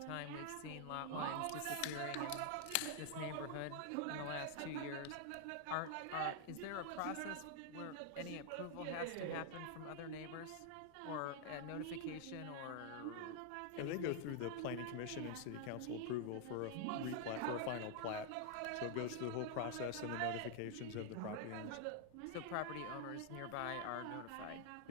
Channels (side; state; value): both; different; correlation 0.00